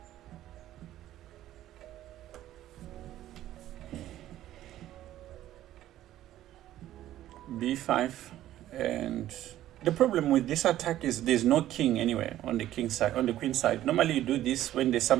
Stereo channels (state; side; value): quieter; left; 13.4 dB